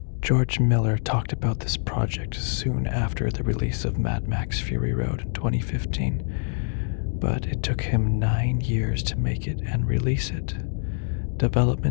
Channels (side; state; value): right; silent; digital silence